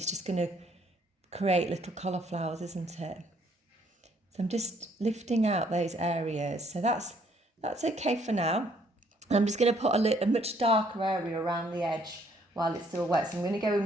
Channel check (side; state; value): both; normal; correlation 0.65